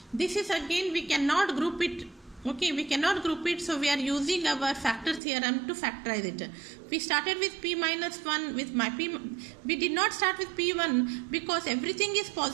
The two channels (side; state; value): left; drops out; at 5.2 s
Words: This is again, we cannot group it. Okay, we cannot group it, so we are using our factor theorem to factorize it. We started with P minus 1 with my P. We did not start with P1 because everything is